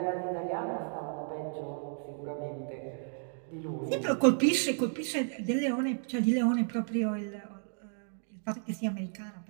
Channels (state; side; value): silent; left; 56 dB below the other